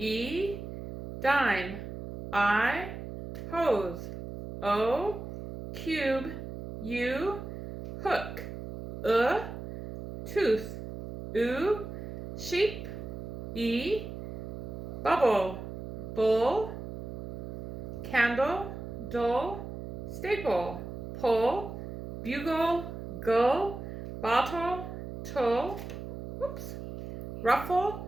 Dime, I. Hose, O. Cube, U. Hook, Tooth, U. Sheep, E. Bubble, Bull. Candle, Dull. Staple, Pull. Bugle, Gull. Bottle, Tull. Whoops. Ruffle,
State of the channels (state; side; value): noise; right; hum, 9 dB below the sound